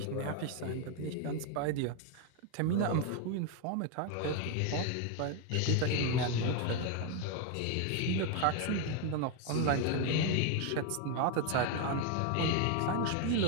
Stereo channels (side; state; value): both; different; correlation 0.01